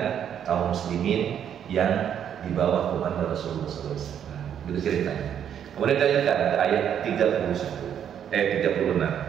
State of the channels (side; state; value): left; quieter; 9.0 dB